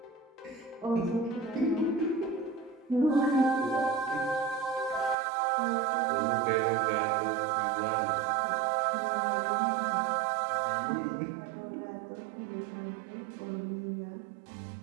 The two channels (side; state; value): left; drops out; at 5.2 s